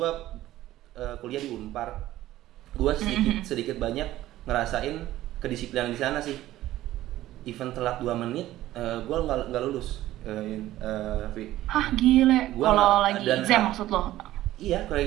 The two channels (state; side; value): quieter; left; 14.8 dB